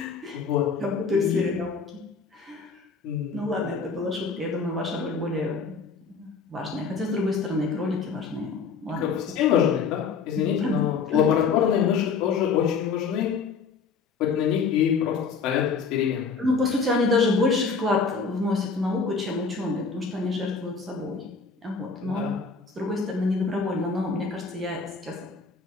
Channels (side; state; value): right; quieter; 5.2 dB